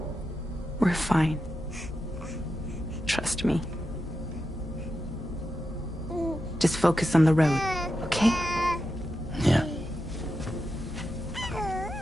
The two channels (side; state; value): both; normal; correlation 0.88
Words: We're fine. Trust me. Just focus on the road, okay? Yeah.